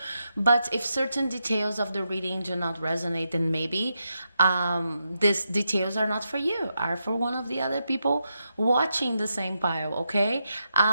but if certain details of the reading do not resonate, then maybe these details are not for you, are for one of the other people watching the same pile. Okay,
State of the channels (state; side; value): inverted; both; correlation -0.85